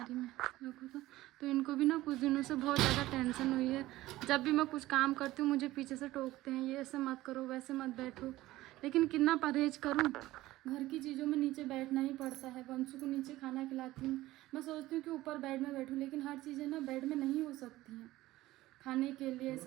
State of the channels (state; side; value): quieter; left; 16.9 dB